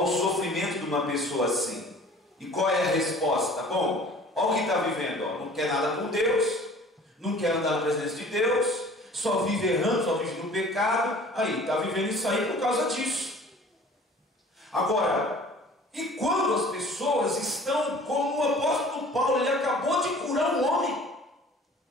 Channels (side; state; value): both; normal; correlation 0.47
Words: sofrimento de uma pessoa assim. E qual é a resposta? Bom, olha o que está vivendo, não quer nada com Deus, não quer andar na presença de Deus, só vive errando, só vive no pecado. Aí, está vivendo isso aí por causa disso. Agora, e quando as pessoas estão como o apóstolo Paulo, ele acabou de curar um homem,